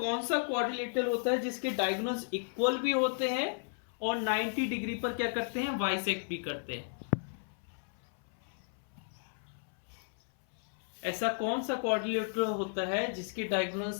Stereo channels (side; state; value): right; silent; 55 dB below the other